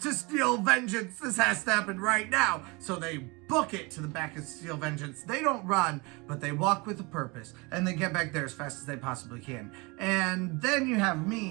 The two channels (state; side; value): quieter; left; 26.9 dB